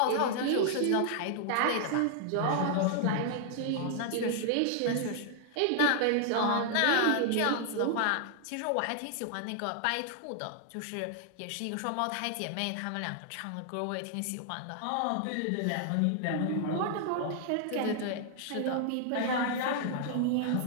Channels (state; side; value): different; both; correlation 0.00